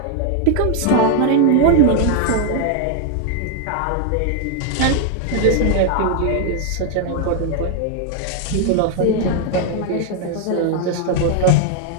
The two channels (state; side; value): different; both; correlation 0.00